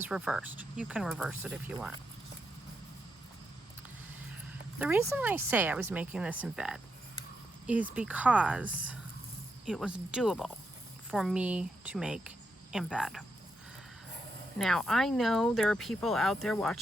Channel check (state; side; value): normal; both; correlation 0.82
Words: reversed. You can reverse it if you want. The reason I say I was making this in bed is because it was doable for me to make in bed. Now, I know there are people out there